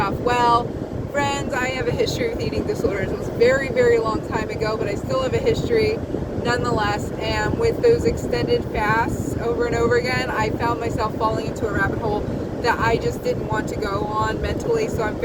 Well, friends, I have a history with eating disorders. It was a very, very long time ago, but I still have a history nonetheless. And with those extended fasts over and over again, I found myself falling into a rabbit hole that I just didn't want to go on mentally. So I'm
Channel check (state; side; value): identical; both; correlation 1.00